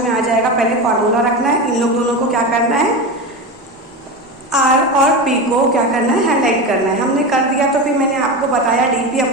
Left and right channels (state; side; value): normal; both; correlation 0.22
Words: आ जाएगा। पहले फॉर्मूला रखना है, इन लोग दोनों को क्या करना है, R और P को क्या करना है, हाईलाइट करना है। हमने कर दिया तो फिर मैंने आपको बताया dp